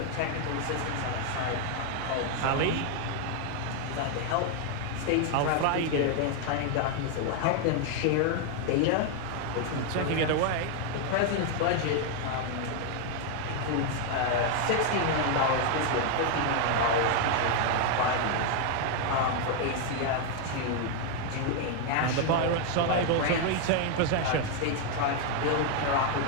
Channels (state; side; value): different; both; correlation 0.01